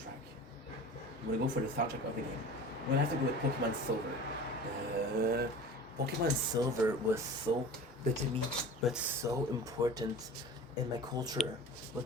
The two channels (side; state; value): both; normal; correlation 0.38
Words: I'm gonna go for the soundtrack of the game. I'm gonna have to go with Pokemon Silver. Pokemon Silver was so good to me, but so important in my culture. It